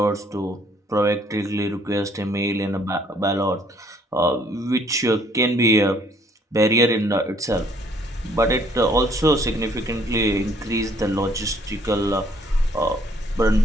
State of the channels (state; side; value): normal; both; correlation 0.62